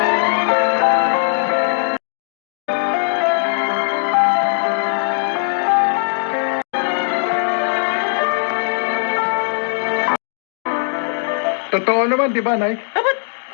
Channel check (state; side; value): silent; right; digital silence